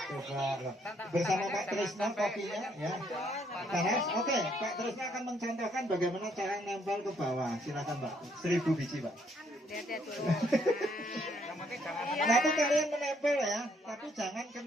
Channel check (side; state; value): both; normal; correlation 0.69